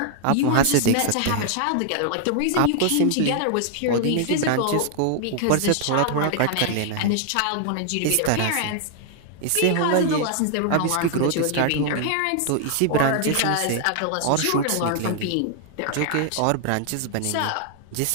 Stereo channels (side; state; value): both; different; correlation 0.00